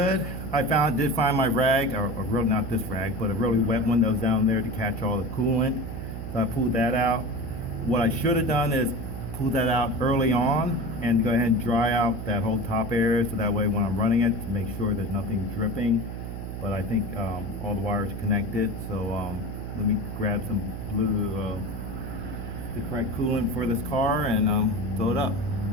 I did find my rag, or really not this rag, but a really wet one that was down there to catch all the coolant. So I pulled that out. What I should have done is pull that out early on and go ahead and dry out that whole top area, so that way when I'm running it, to make sure there's nothing dripping. But I think all the wires are connected, so let me grab some blue, the correct coolant for this car, and fill it up.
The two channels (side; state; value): right; noise; hum, 7 dB below the sound